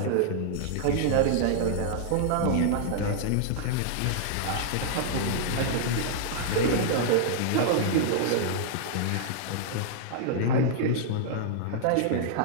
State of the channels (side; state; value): both; different; correlation -0.01